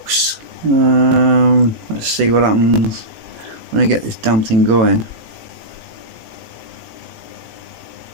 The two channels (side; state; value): left; late; 18 ms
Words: Let's see what happens when I get this damn thing going.